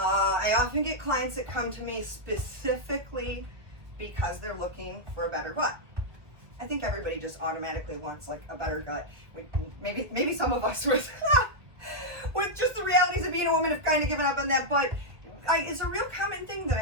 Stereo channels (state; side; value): late; left; 1.4 ms